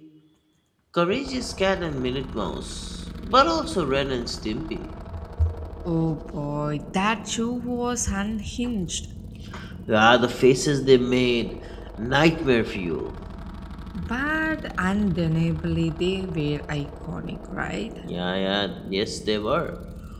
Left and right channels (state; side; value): identical; both; correlation 1.00